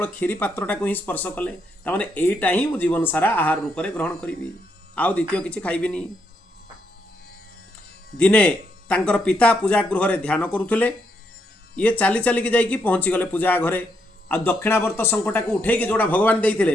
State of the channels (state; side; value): normal; both; correlation 0.78